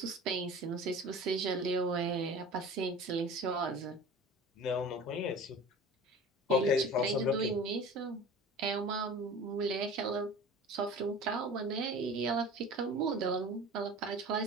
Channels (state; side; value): normal; both; correlation 0.39